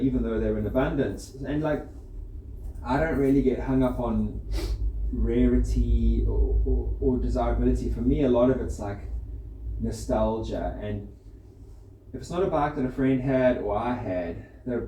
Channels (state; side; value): identical; both; correlation 1.00